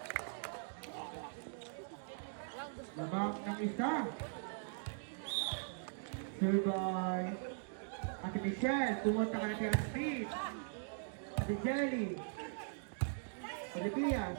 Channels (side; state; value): left; silent; digital silence